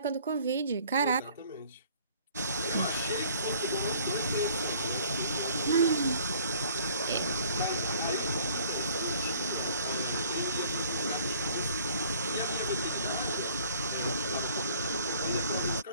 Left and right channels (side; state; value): both; inverted; correlation -0.56